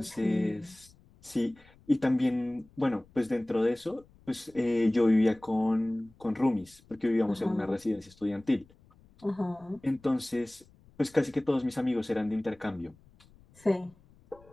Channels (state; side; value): noise; left; rumble, 28 dB below the sound